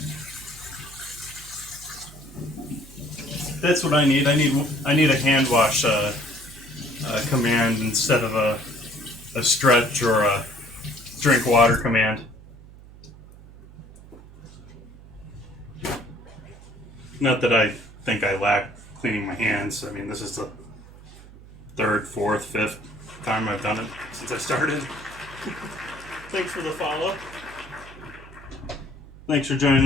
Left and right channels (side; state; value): right; noise; hum, 19 dB below the sound